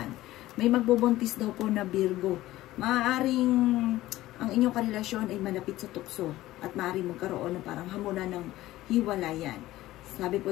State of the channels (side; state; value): right; quieter; 16.1 dB